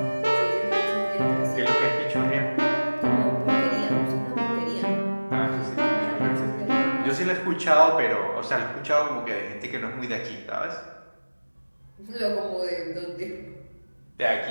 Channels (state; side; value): inverted; both; correlation -1.00